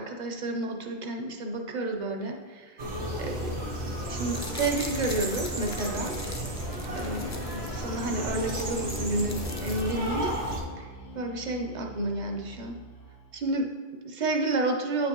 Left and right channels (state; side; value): normal; both; correlation -0.05